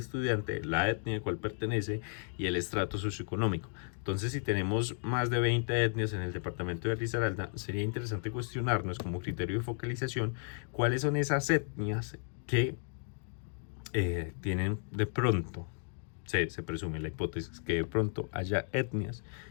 la etnia a cual pertenece y el estrato socioeconómico. Entonces, si tenemos más de 20 etnias en el departamento de Risaralda, sería interesante cuestionarnos como criterio de focalización cuáles son esas etnias que tienen de pronto, se presume la hipótesis que de pronto haya etnias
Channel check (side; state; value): right; silent; 55 dB below the other